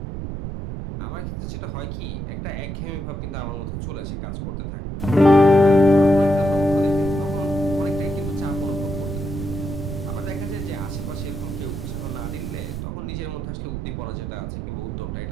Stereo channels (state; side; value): noise; right; rumble, 5 dB below the sound